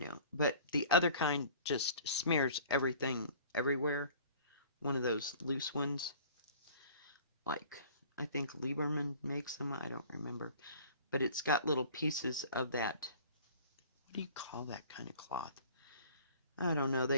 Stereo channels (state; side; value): inverted; both; correlation -0.48